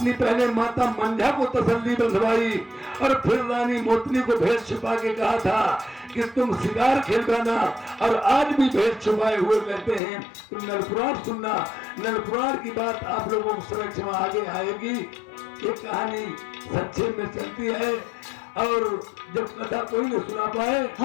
पहले माता मंझा को तसल्ली बंधवाई और फिर रानी मोतनी को भेद छुपा के कहा था कि तुम शिकार खेलवाना, और आज भी भेद छुपाए हुए कहते हैं तुम नलपुराण सुनना। नलपुराण की बात आप लोगों को समक्ष में आगे आएगी। ये कहानी संक्षेप में चलती है, और जब कथा कोई नहीं सुना पाए,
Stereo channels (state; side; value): drops out; right; at 10.0 s